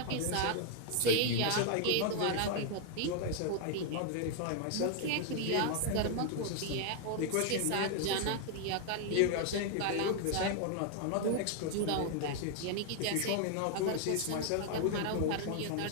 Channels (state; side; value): different; both; correlation 0.00